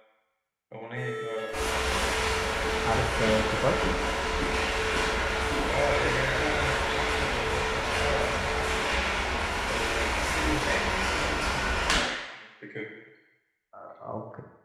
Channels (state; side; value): identical; both; correlation 1.00